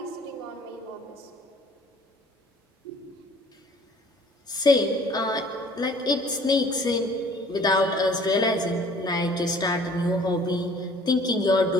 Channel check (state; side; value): normal; both; correlation 0.53